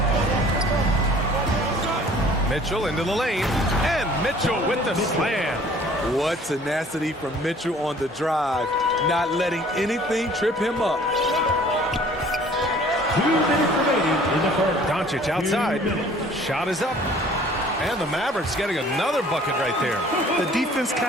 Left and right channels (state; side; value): normal; both; correlation 0.52